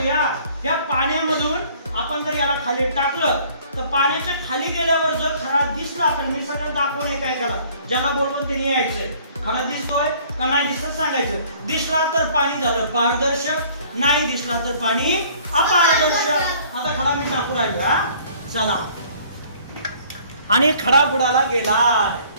या पाण्यामधून आपण जर याला खाली टाकलं तर पाण्याच्या खाली गेल्यावर जर खरा दिसला तर मी सगळं दाखवून एकाला ज्याला बोलवून त्यांनी यायचंय. खरा दिसतोय का नाही दिसत सांगायचं. दिसला तर पाणी झालं पारदर्शक, नाही दिसला तर पाणी अपारदर्शक. आता खडा मी टाकू राहिला. चला आणि खडा बुडाला गेलाय.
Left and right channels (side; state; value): both; inverted; correlation -0.56